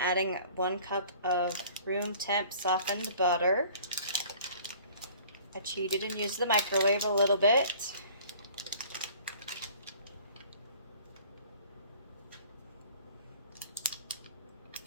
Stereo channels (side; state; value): both; inverted; correlation -0.50